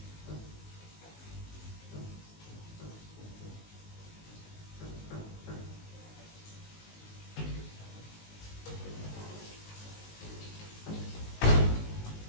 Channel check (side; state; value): right; late; 19 ms